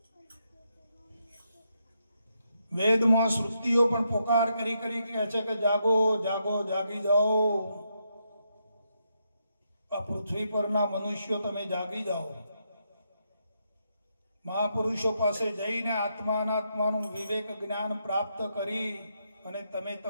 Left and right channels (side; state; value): both; inverted; correlation -0.80